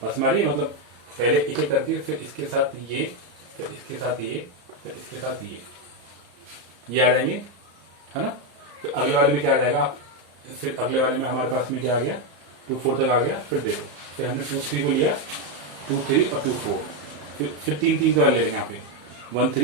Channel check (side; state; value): left; late; 34 ms